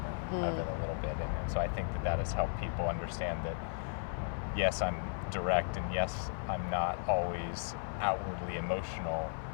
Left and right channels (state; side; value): silent; right; 54 dB below the other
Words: of it a little bit. And so I think that has helped people understand that yes, I'm direct, and yes, I'm not always outwardly emotional,